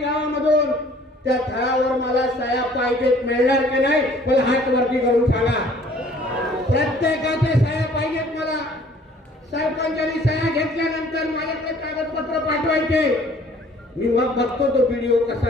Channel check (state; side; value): normal; both; correlation 0.55